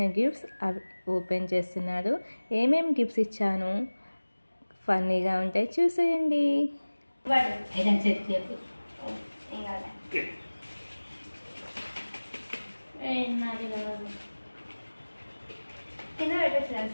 గిఫ్ట్స్ అవి ఓపెన్ చేస్తున్నాడు. ఏమేమి గిఫ్ట్స్ ఇచ్చాను ఫన్నీగా ఉంటాయి, చూసేయండి.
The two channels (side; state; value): both; inverted; correlation -1.00